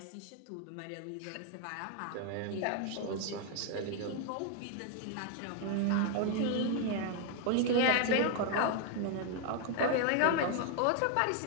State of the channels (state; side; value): different; both; correlation 0.00